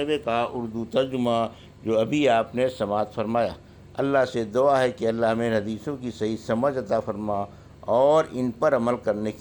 کا اردو ترجمہ جو ابھی آپ نے سماعت فرمایا۔ اللہ سے دعا ہے کہ اللہ ہمیں حدیثوں کی صحیح سمجھ عطا فرما اور ان پر عمل کرنے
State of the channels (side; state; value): both; identical; correlation 1.00